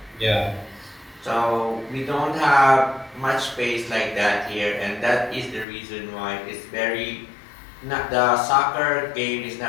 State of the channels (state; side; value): drops out; right; at 5.7 s